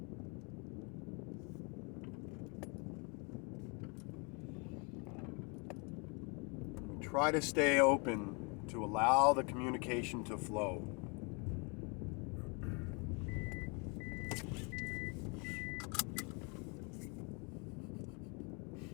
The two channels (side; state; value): right; quieter; 33.1 dB